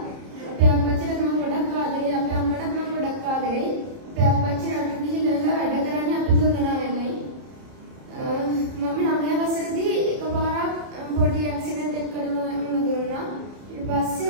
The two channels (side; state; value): left; late; 30 ms